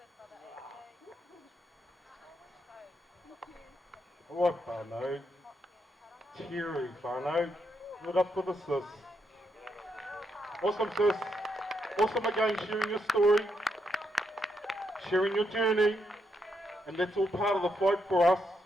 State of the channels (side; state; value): both; normal; correlation 0.79